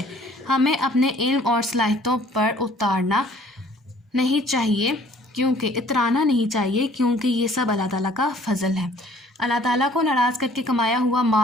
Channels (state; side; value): normal; both; correlation 0.56